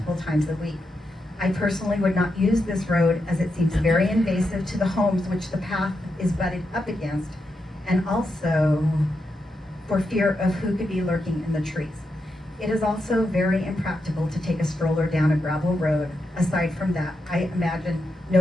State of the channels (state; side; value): normal; both; correlation 0.85